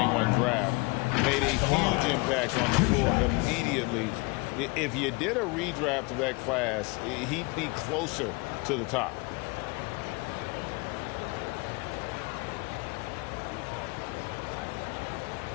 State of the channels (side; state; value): right; quieter; 27.2 dB